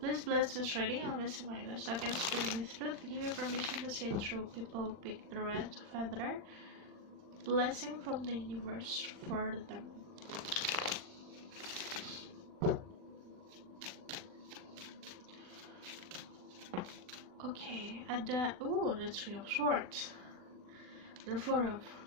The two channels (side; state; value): left; late; 39 ms